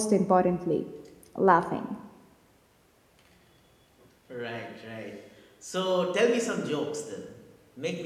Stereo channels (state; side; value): identical; both; correlation 1.00